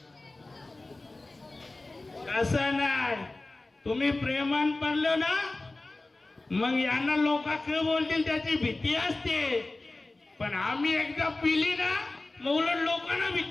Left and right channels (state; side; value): quieter; right; 3.0 dB